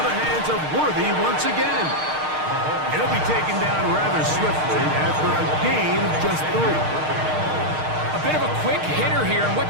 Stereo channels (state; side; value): late; left; 6.5 ms